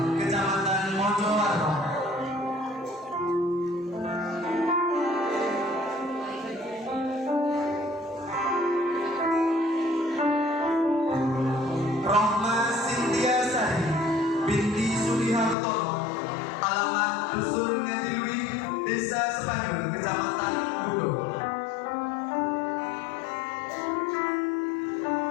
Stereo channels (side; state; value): right; drops out; at 15.6 s